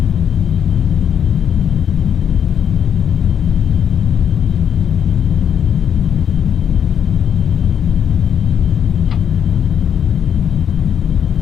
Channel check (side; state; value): right; quieter; 8.4 dB